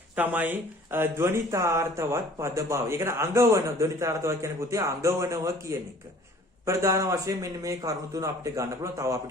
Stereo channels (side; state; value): both; normal; correlation 0.51